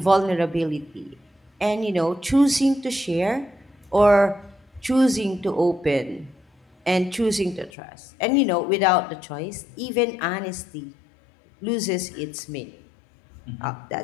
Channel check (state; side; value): drops out; right; at 7.7 s